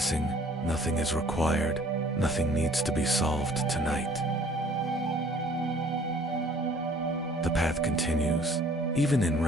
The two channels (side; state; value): both; normal; correlation 0.55